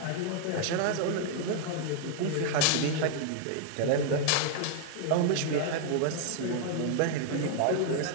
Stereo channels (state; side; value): different; both; correlation 0.00